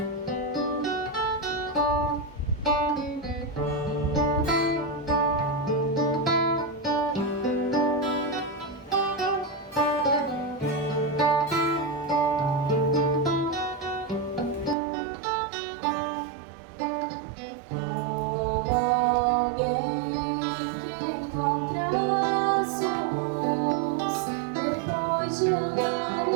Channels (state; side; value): drops out; left; at 14.8 s